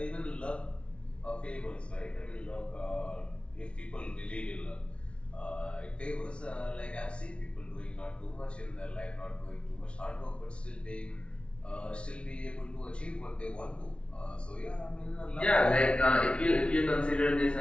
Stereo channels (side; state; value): right; late; 0.059 ms